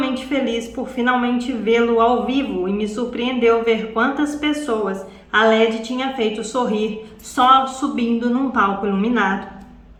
feliz por finalmente vê-lo ao vivo, e me surpreendeu ver quantas pessoas a Led tinha feito sorrir só subindo num palco iluminado.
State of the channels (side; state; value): both; identical; correlation 1.00